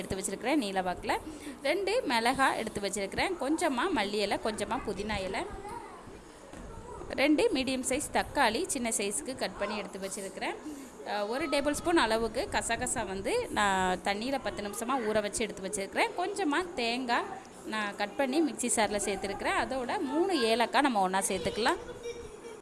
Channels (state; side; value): identical; both; correlation 1.00